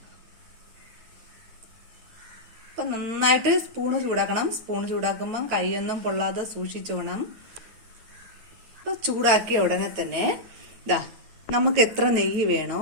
അപ്പം നന്നായിട്ട് സ്പൂണ് ചൂടാക്കണം. സ്പൂൺ ചൂടാക്കുമ്പോൾ കൈയൊന്നും പൊള്ളാതെ സൂക്ഷിച്ചു വേണം. അപ്പോൾ ചൂടാക്കിയ ഉടനെ തന്നെ നമുക്ക് എത്ര നെയ്യ് വേണോ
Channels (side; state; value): left; late; 9.2 ms